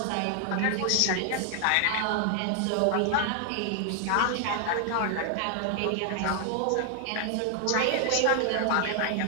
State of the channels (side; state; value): both; different; correlation 0.00